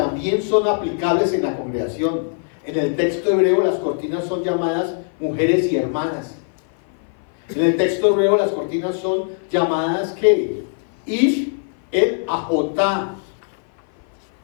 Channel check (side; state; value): right; silent; 56 dB below the other